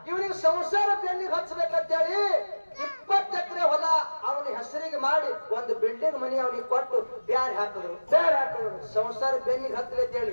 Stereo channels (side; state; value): both; inverted; correlation -1.00